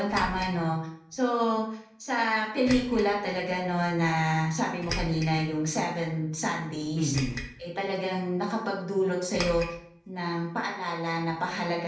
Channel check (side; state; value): both; identical; correlation 1.00